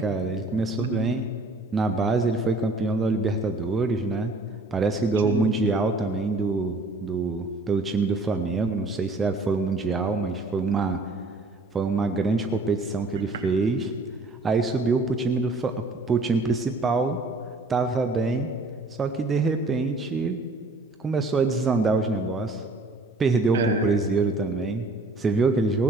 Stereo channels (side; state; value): left; quieter; 3.1 dB